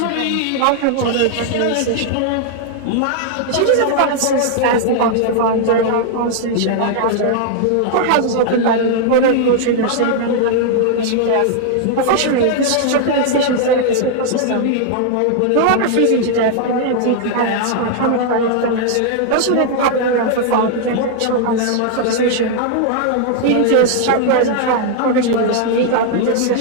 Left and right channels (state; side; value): different; both; correlation 0.00